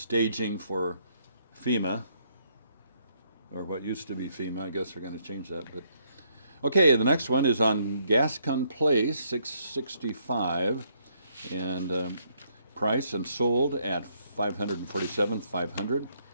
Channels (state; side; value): inverted; both; correlation -0.71